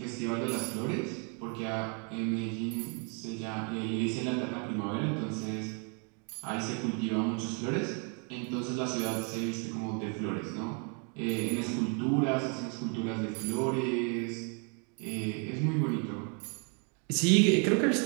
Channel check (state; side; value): quieter; left; 38.1 dB